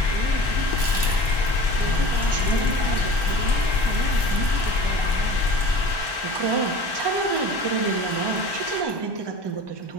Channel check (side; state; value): left; late; 1.2 ms